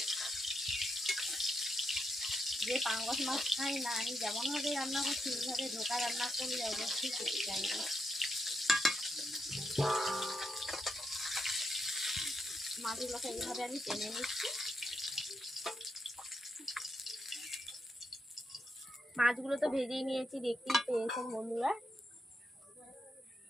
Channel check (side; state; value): both; normal; correlation 0.83